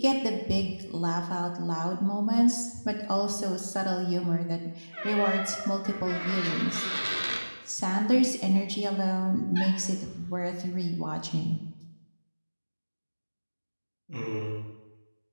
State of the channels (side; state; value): both; inverted; correlation -1.00